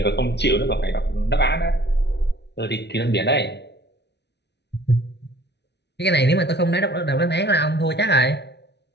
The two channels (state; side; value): late; right; 0.50 ms